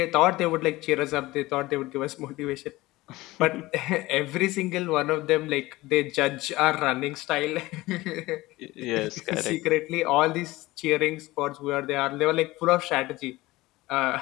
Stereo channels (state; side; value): quieter; right; 19.2 dB